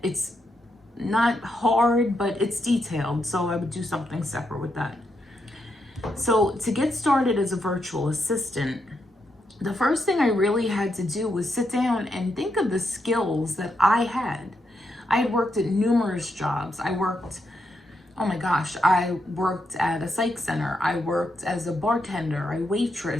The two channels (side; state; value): both; normal; correlation 0.81